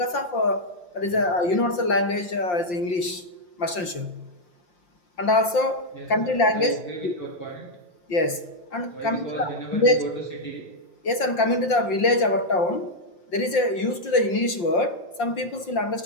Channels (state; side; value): late; right; 5.7 ms